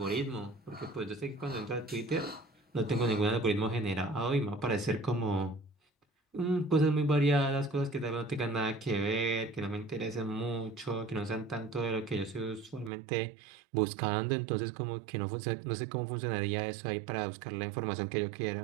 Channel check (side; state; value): left; drops out; at 12.9 s